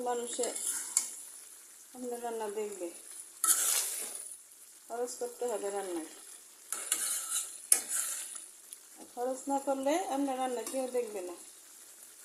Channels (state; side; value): identical; both; correlation 1.00